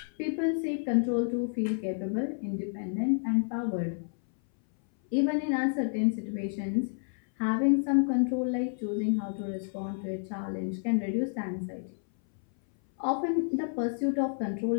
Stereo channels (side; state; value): right; silent; 58 dB below the other